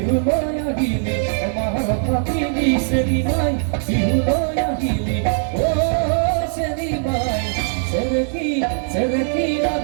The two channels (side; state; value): left; silent; digital silence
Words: লয় আহিলি আমার ফাঁকি দিছে নিমাই বিহু লয় আহিলি ও সে নিমাই সেরেকি